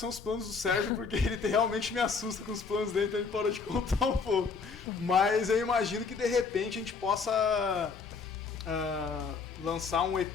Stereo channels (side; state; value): right; quieter; 5.1 dB